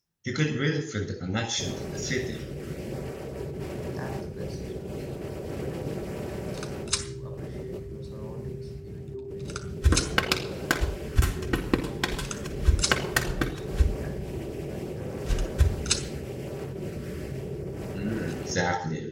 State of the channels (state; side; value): identical; both; correlation 1.00